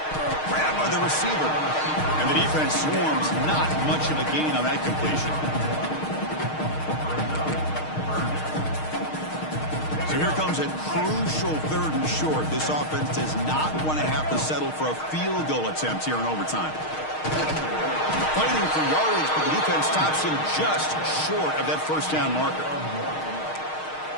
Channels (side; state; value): right; late; 6.5 ms